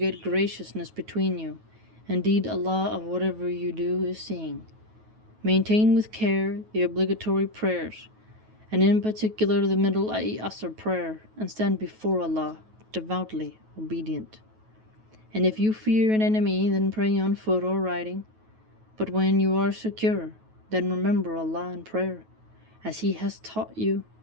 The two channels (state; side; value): late; left; 9.3 ms